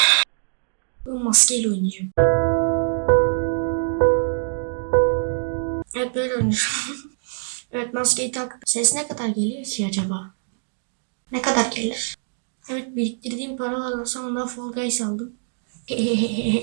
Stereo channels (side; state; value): left; silent; digital silence